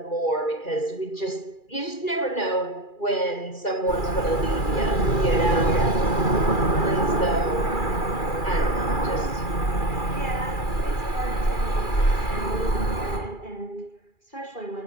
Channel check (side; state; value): right; late; 2.4 ms